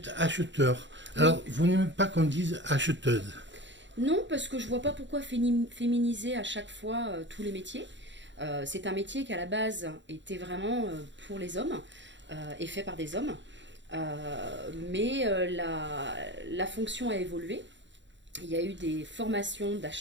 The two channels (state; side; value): late; left; 0.53 ms